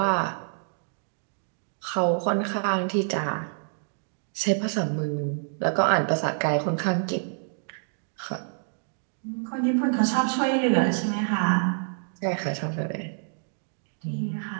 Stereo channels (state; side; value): silent; left; digital silence